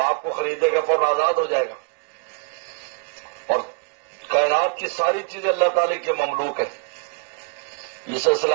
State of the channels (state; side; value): quieter; left; 35.3 dB